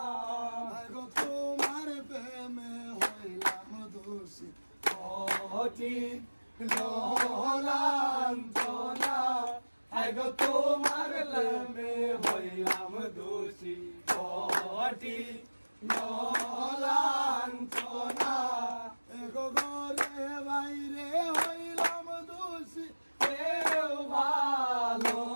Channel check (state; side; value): inverted; both; correlation -1.00